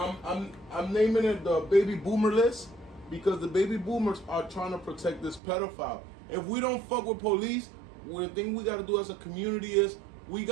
naming it the baby boomer list because the baby boomers are trying to protect this pedophile. If we don't fuck with police, the thing we got to do as a community is we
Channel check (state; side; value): drops out; left; at 5.4 s